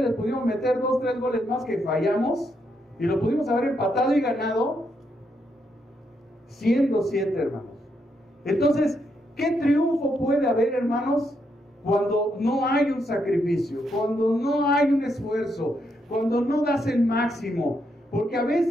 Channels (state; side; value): normal; both; correlation 0.78